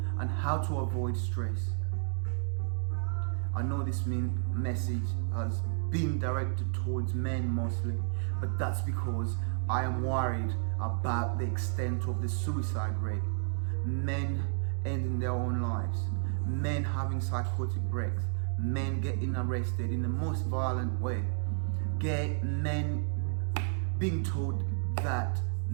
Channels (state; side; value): silent; left; 57 dB below the other